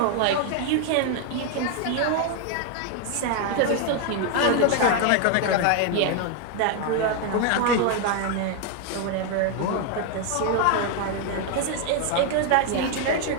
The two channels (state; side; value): different; both; correlation 0.00